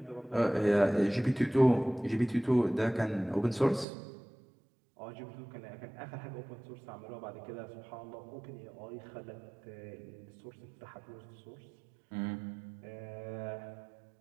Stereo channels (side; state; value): left; drops out; at 3.9 s